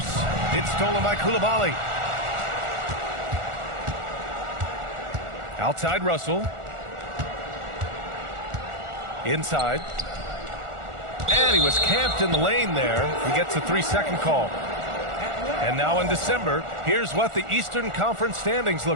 It's stolen by Koulibaly. Outside Russell. Inside. And he was camped in the lane there. He gets a 3-second call. And now in December, here's what the Eastern Conference standings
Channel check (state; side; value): late; left; 1.4 ms